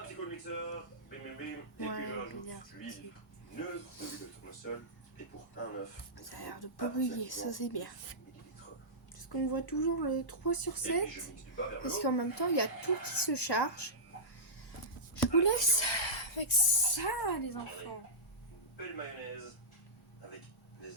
petit coup de mixeur, bim bim bim, et puis je rajoute l'huile neutre de l'huile de tournesol, et pour un œuf. Ça a l'air de pas brûler, ça c'est bien. Parce qu'on voit toujours le 3 sur 7, parce qu'en même temps il y a tout qui se charge. Je vous laisse avec ça les enfants. Une belle mayonnaise avec des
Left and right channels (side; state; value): both; normal; correlation -0.14